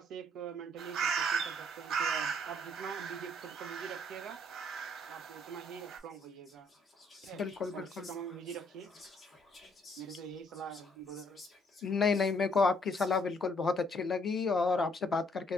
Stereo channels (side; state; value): both; normal; correlation 0.66